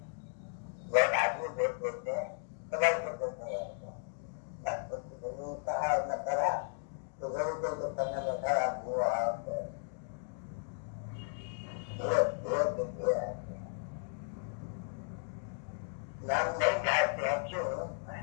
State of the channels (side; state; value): right; silent; digital silence